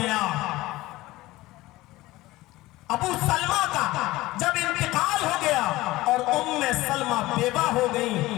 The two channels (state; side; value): quieter; right; 18.4 dB